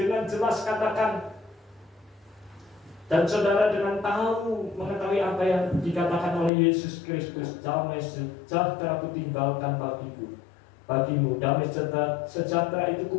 jelas katakan, dan saudara dengan tahu mengetahui apa yang dikatakan oleh Yesus Kristus, damai sejahtera ku tinggalkan bagimu, damai sejahtera itu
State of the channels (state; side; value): drops out; right; at 6.5 s